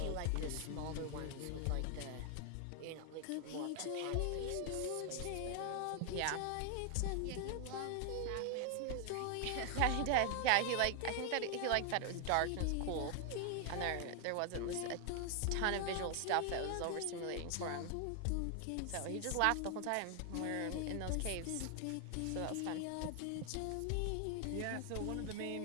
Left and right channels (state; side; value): different; both; correlation 0.00